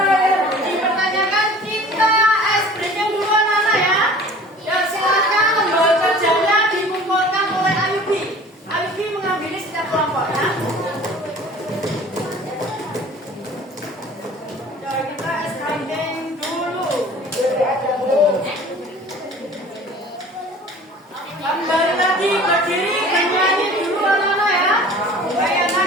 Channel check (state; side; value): normal; both; correlation 0.45